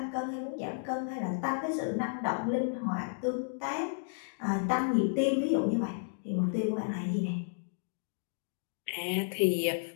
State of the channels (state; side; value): silent; right; digital silence